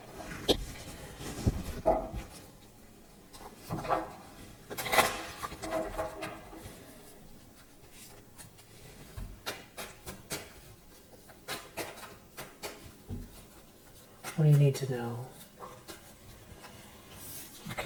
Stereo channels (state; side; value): identical; both; correlation 1.00